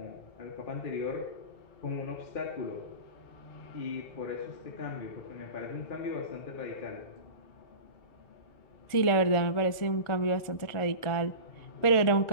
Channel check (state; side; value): late; right; 1.4 ms